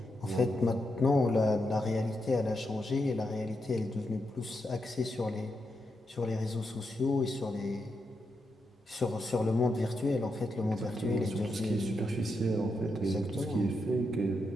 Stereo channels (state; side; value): normal; both; correlation 0.84